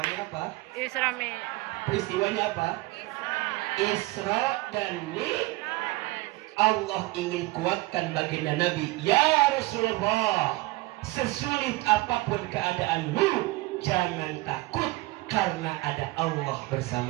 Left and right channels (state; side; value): quieter; left; 21.3 dB